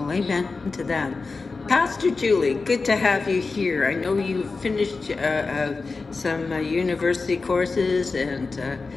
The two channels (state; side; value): quieter; right; 4.1 dB